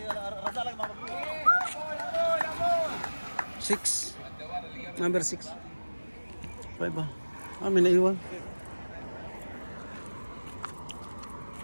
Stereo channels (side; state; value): both; inverted; correlation -1.00